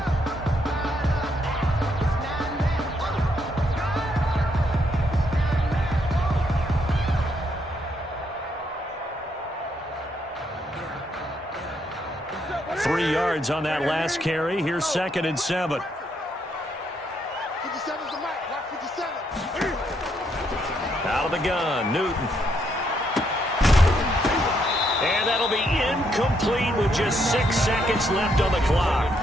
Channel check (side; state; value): both; normal; correlation 0.75